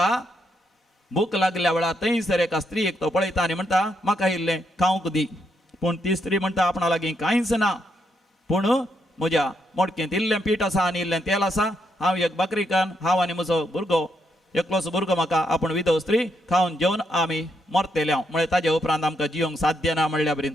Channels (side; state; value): both; normal; correlation 0.78